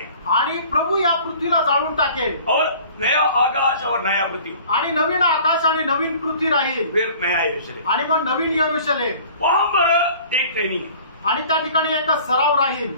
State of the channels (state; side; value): inverted; both; correlation -0.48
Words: आणि प्रभू या पृथ्वीला जाळून टाकेल, और नया आकाश और नया पृथ्वी, आणि नवीन आकाश आणि नवीन पृथ्वी राहील, फिर नया यरूशलेम, आणि मग नवीन यरूशलेम। वहां पर एक ट्रेनिंग, आणि त्या ठिकाणी एक सराव राहील।